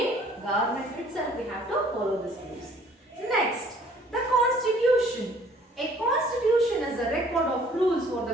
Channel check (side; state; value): both; normal; correlation 0.56